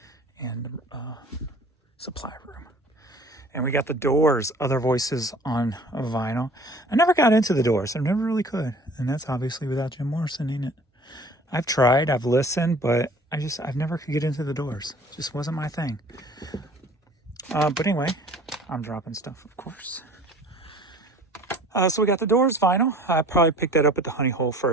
supply room. And we got the Doors, Other Voices on vinyl. I never got into the Doors. I never really could. And that's obviously without Jim Morrison in it. I've tried, I've listened, but I've never could get into the Doors. It just wasn't my thing. But anyway, I'm dropping stuff, of course. So we got the Doors vinyl. I probably picked that up at the Honey Hole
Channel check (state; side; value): normal; both; correlation 0.49